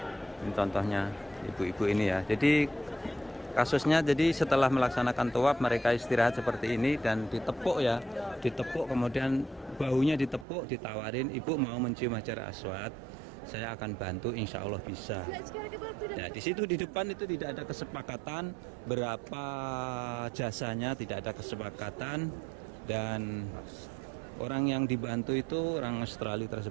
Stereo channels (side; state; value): left; drops out; at 10.5 s